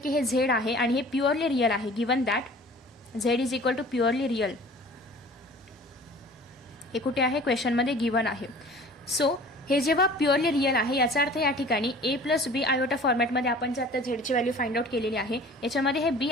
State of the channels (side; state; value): both; normal; correlation 0.46